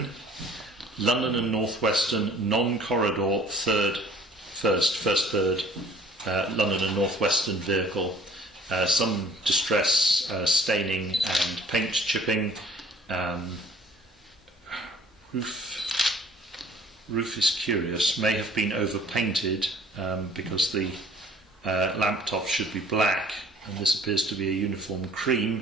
London and North Western non-corridor first third London and North Western vehicle. Some distress, staining and paint chipping. Roof is curious, may have been overpainted because the lamp top should be black and this appears to be a uniform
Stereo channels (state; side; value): normal; both; correlation 0.53